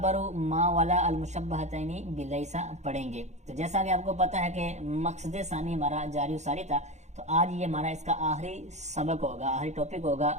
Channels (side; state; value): left; late; 0.33 ms